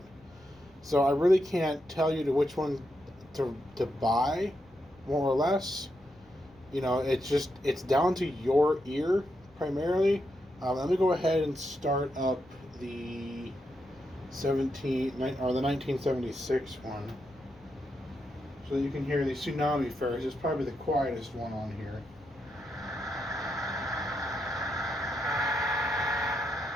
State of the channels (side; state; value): left; noise; rumble, 27 dB below the sound